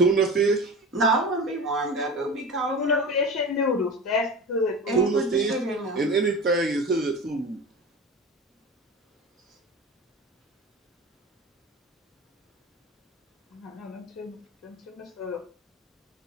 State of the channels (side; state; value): both; normal; correlation 0.31